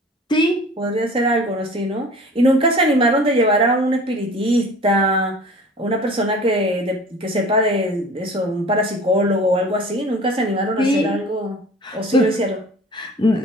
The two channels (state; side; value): normal; both; correlation 0.43